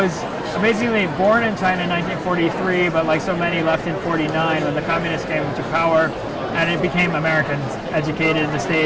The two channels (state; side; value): identical; both; correlation 1.00